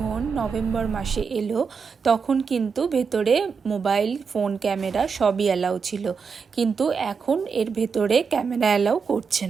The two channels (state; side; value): quieter; left; 5.7 dB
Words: নভেম্বর মাসে এলো তখন কিন্তু ভেতরে মোবাইল ফোন ক্যামেরা সবই অ্যালাউ ছিল, কিন্তু এখন এর ভেতরে ক্যামেরা অ্যালাউ করছে